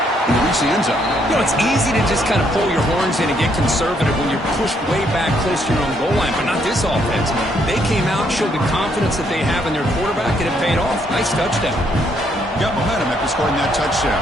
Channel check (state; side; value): normal; both; correlation 0.71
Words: they reached the end zone. You know, it's easy to just kind of pull your horns in and get conservative when you're pushed way back close to your own goal line, but not this offense. They came out, showed the confidence that they have in their quarterback, and it paid off. Nice touchdown. Got momentum after scoring that touchdown.